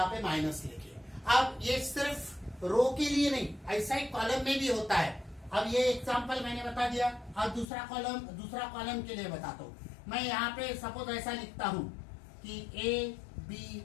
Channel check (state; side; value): drops out; right; at 7.7 s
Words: पे माइनस लिखिए। अब ये सिर्फ रो के लिए नहीं, ऐसा ही कॉलम में भी होता है। अब ये एग्जांपल मैंने बता दिया। अब दूसरा कॉलम के लिए बताता हूँ। मैं यहाँ पे सपोज ऐसा लिखता हूं कि